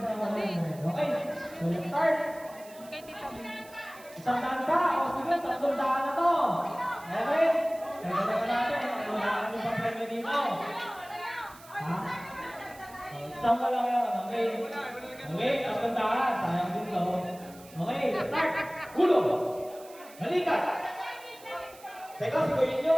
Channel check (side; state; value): right; noise; hiss, 21 dB below the sound